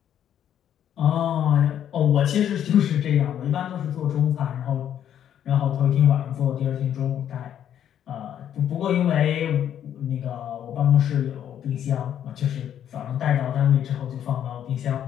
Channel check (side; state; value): right; quieter; 10.0 dB